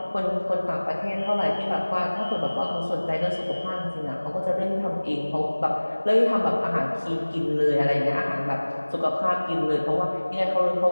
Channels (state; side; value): inverted; both; correlation -1.00